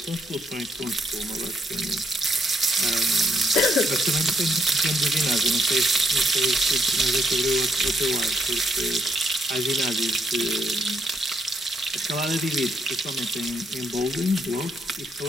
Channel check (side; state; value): both; normal; correlation 0.75